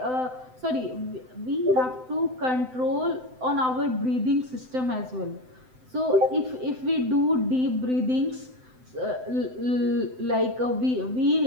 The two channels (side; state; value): left; late; 7.8 ms